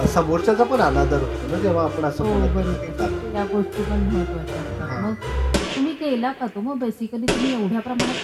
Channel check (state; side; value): identical; both; correlation 1.00